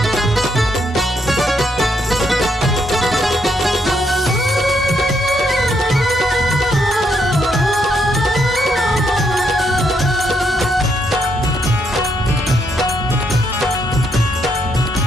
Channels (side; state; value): both; normal; correlation 0.76